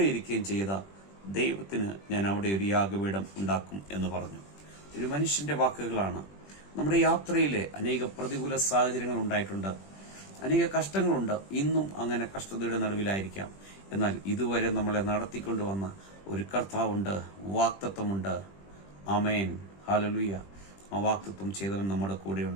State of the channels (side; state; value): right; late; 20 ms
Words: ഇരിക്കുകയും ചെയ്ത ദൈവത്തിന് ഞാൻ അവിടെ ഒരു യാഗപീഠം ഉണ്ടാക്കും എന്ന് പറഞ്ഞു. ഒരു മനുഷ്യന്റെ വാക്കുകളാണ്. നമ്മുടെ യാത്രയിലെ അനേക പ്രതികൂല സാഹചര്യങ്ങൾ ഉണ്ടായിട്ടുണ്ട്, അനേക കഷ്ടങ്ങളുണ്ട്. ഇന്നും അങ്ങനെ കഷ്ടതയുടെ നടുവിലായിരിക്കാം. എന്നാൽ ഇതുവരെ നമ്മളെ നടത്തിക്കൊണ്ടുവന്ന ഒരു കർത്താവുണ്ട്, വാക്തത്വമുണ്ട്. ആമേൻ, ഹല്ലേലൂയ. ആ വാക്തത്വം ചെയ്തവൻ നമ്മുടെ